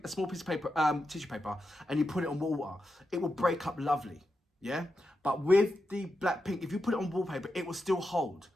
a small piece of paper, tissue paper, and you put it on water, it will break up lovely, yeah? But with the Blackpink, if you put it on wallpaper, it will still hold.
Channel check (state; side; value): normal; both; correlation 0.88